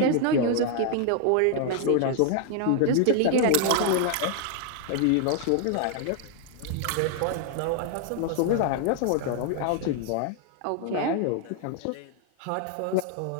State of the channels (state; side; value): different; both; correlation 0.00